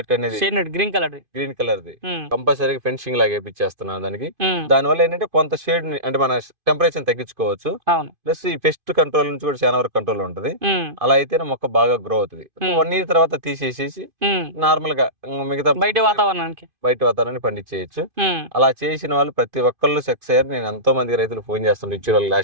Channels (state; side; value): late; left; 2.5 ms